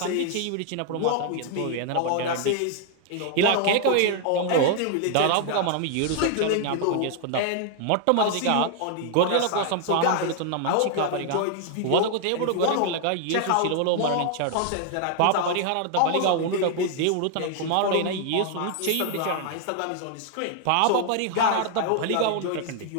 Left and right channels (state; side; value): different; both; correlation 0.00